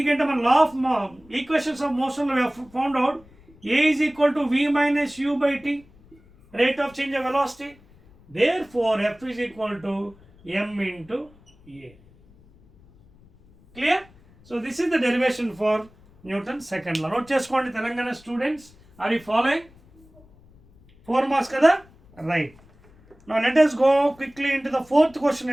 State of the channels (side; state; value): left; noise; rumble, 27 dB below the sound